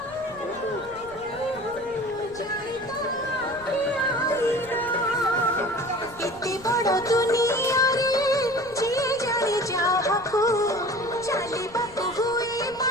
इतनी बड़ा दुनिया रे जे जाने जाहको चाली बापू हुए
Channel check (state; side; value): noise; left; rumble, 22 dB below the sound